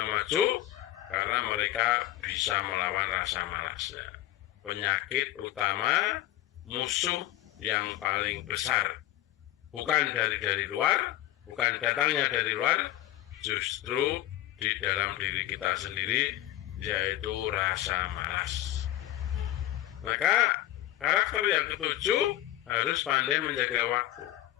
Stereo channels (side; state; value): right; quieter; 14.4 dB